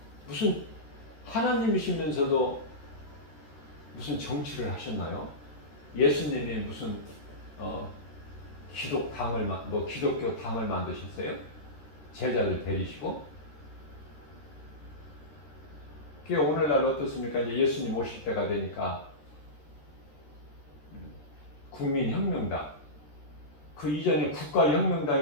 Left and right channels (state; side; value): late; right; 13 ms